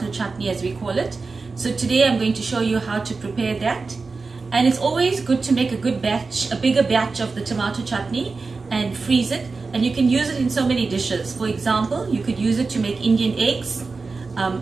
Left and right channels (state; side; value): quieter; left; 4.2 dB